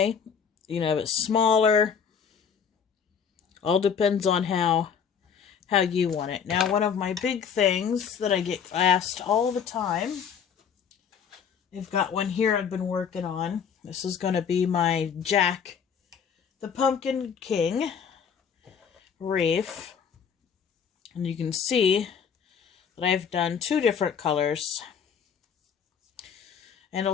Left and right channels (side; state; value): right; quieter; 7.1 dB